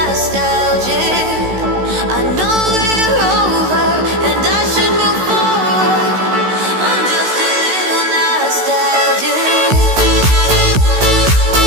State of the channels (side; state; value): left; late; 16 ms